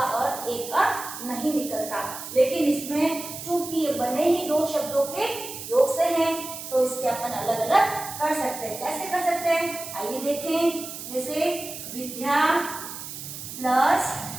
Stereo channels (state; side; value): noise; right; hiss, 10 dB below the sound